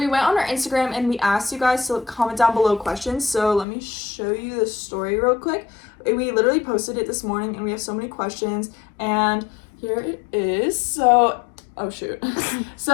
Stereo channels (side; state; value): right; drops out; at 3.7 s